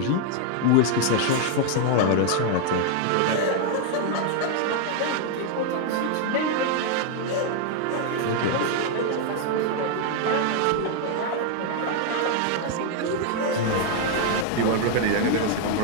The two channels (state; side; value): different; both; correlation 0.00